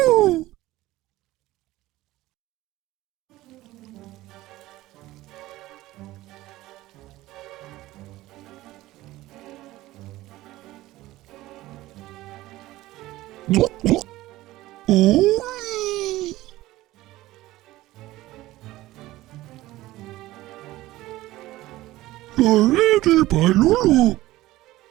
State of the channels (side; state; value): left; quieter; 17.0 dB